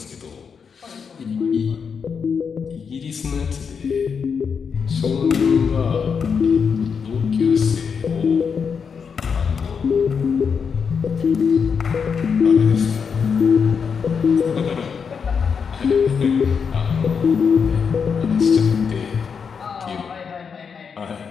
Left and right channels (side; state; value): right; quieter; 6.2 dB